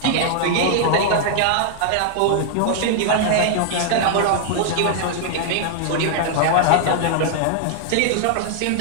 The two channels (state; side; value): different; both; correlation 0.00